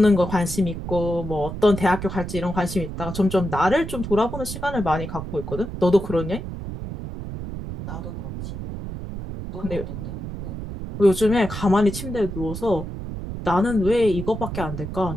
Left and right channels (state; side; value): noise; right; rumble, 7 dB below the sound